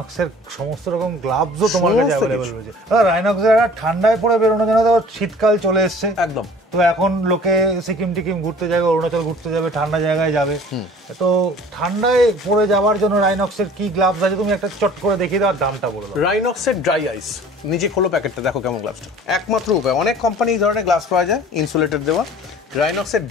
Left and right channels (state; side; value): normal; both; correlation 0.48